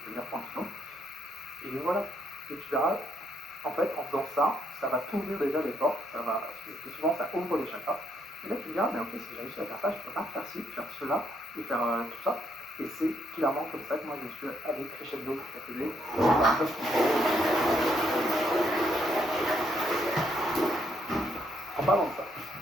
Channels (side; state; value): both; normal; correlation 0.74